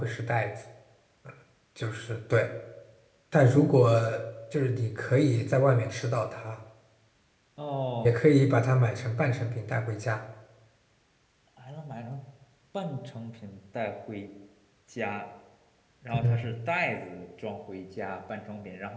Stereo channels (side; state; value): both; identical; correlation 1.00